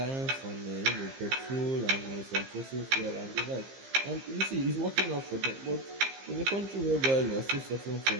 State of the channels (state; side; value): late; left; 15 ms